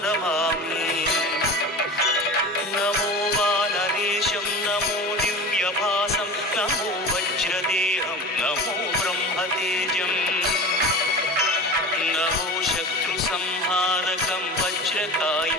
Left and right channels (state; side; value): normal; both; correlation 0.33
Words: नमामि। नमो वानरेशं नमो दिव्यभासं नमो वज्रदेहं नमो ब्रह्मतेजं नमो शत्रुसंहारकं